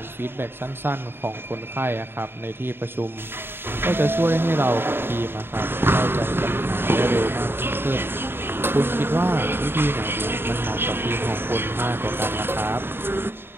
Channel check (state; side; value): late; left; 0.11 ms